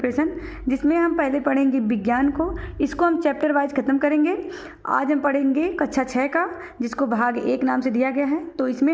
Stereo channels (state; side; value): identical; both; correlation 1.00